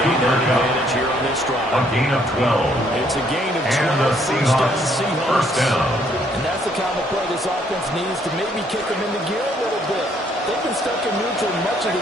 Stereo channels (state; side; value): normal; both; correlation 0.67